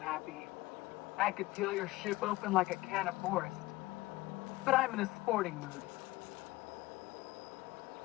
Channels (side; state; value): right; quieter; 19.4 dB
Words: I could peel your ship open like a can of forest. But I'm in a sporting mood.